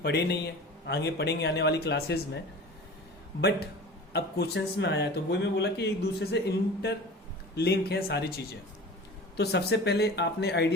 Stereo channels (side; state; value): both; normal; correlation 0.38